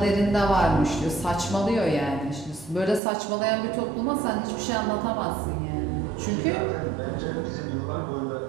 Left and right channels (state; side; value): drops out; left; at 3.0 s